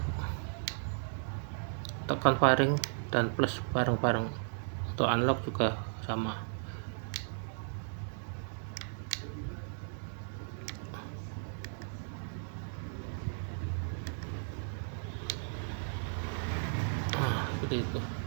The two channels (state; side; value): silent; left; 54 dB below the other